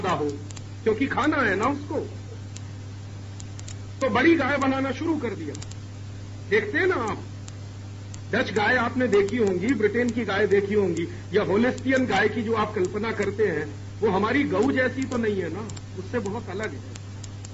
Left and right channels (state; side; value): identical; both; correlation 1.00